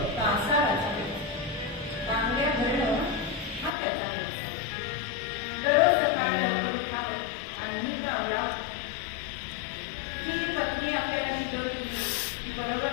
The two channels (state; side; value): drops out; right; at 3.7 s